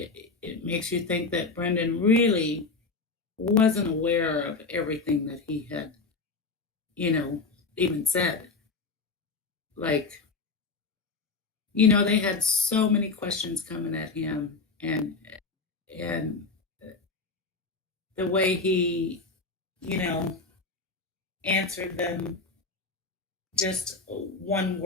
makes you think that Brendan really wasn't aware of everything that he had, even said. Like, they had so many questions coming at him, and the way he, answered them, just one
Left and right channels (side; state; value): right; quieter; 4.1 dB